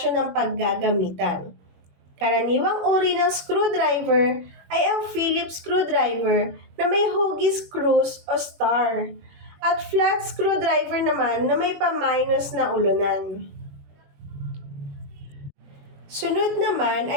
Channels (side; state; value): left; late; 21 ms